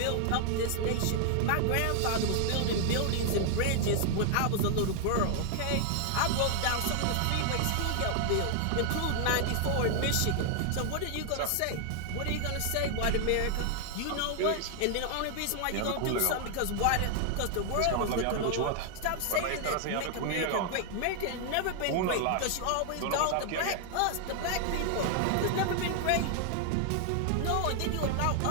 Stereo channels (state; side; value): different; both; correlation 0.00